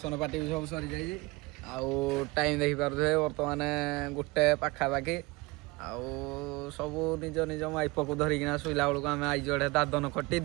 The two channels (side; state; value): left; quieter; 23.8 dB